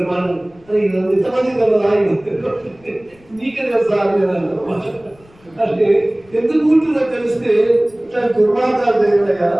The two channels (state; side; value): noise; left; rumble, 29 dB below the sound